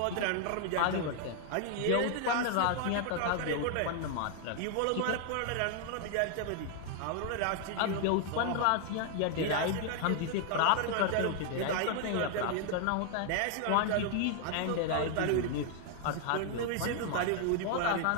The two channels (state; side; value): different; both; correlation 0.00